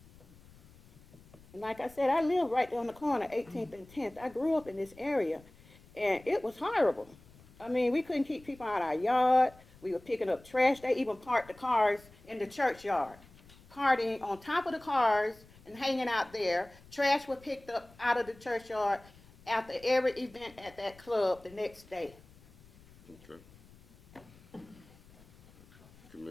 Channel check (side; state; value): left; noise; rumble, 24 dB below the sound